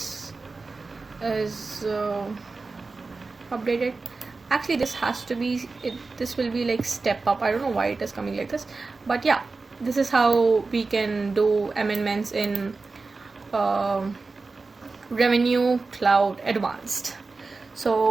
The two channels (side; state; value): left; quieter; 3.9 dB